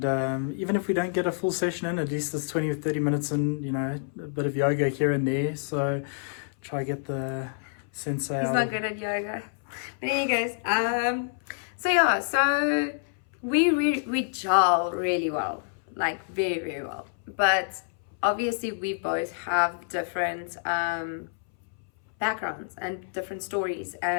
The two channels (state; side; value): silent; right; 60 dB below the other